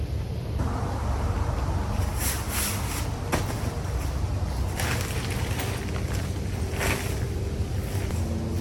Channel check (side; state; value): both; identical; correlation 1.00